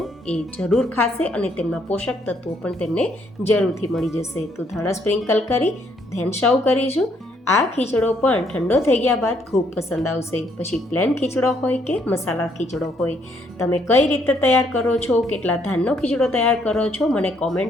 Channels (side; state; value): both; normal; correlation 0.70